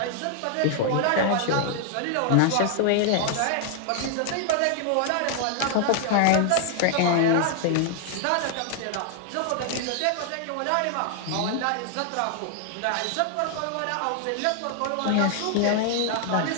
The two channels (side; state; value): both; different; correlation 0.00